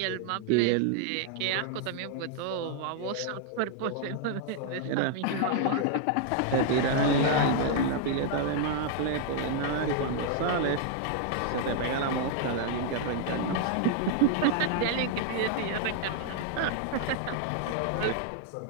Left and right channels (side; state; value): both; different; correlation -0.01